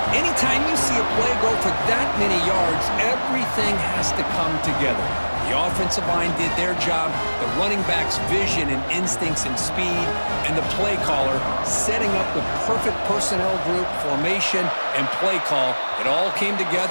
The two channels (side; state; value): both; inverted; correlation -1.00